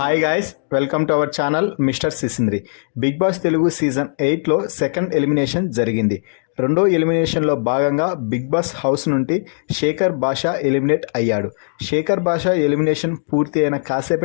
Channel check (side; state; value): right; silent; digital silence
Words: Hi guys, welcome to our channel mister Sisindri. Big Boss Telugu season 8లో సెకండ్ ఎలిమినేషన్ జరిగింది. రెండో ఎలిమినేషన్లో భాగంగా బిగ్ బాస్ హౌస్ నుండి శేఖర్ భాషా ఎలిమినేట్ అయ్యాడు. శేఖర్ భాషా ఎలిమినేషన్ పూర్తి అయిన